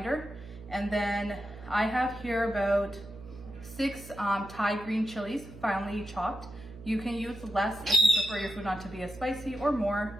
and then I have here about 6 Thai green chilies, finely chopped. You can use less if you prefer your food not to be as spicy, or more.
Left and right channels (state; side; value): noise; right; hum, 15 dB below the sound